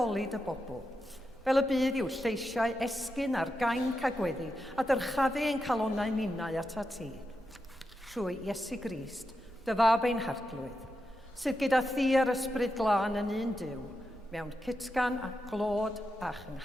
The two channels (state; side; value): normal; both; correlation 0.87